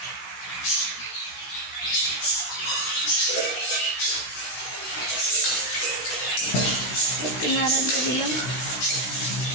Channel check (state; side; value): late; right; 15 ms